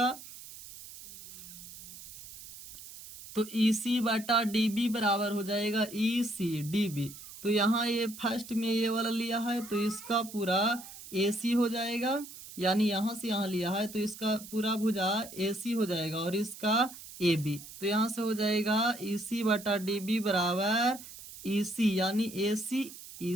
तो ई सी बटा डी बी बराबर हो जाएगा ई सी डी बी। तो यहाँ ये फर्स्ट में ये वाला लिया है तो इसका पूरा ए सी हो जाएगा, यानी यहाँ से यहाँ लिया है तो इसका पूरा भुजा ए सी हो जाएगा और इसका ए बी, तो यहाँ से हो जाएगा ई सी बटा डी बी बराबर ई सी, यानी ए सी ई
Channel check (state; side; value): noise; right; hiss, 15 dB below the sound